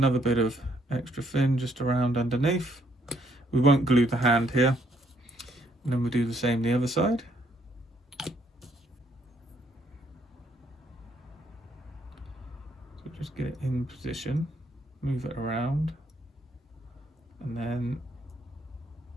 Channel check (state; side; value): normal; both; correlation 0.69